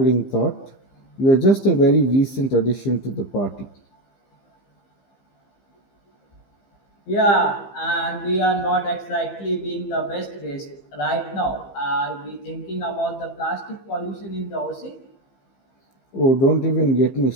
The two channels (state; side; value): late; right; 15 ms